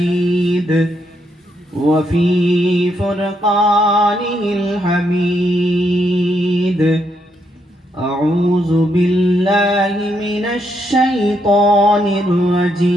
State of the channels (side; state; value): both; normal; correlation 0.77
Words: وفي فرقانه الحميد: أعوذ بالله من الشيطان